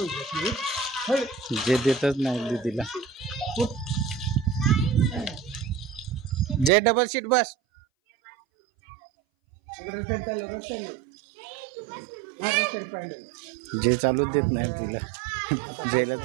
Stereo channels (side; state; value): left; drops out; at 6.7 s